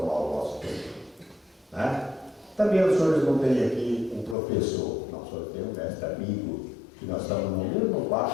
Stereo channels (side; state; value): right; drops out; at 4.4 s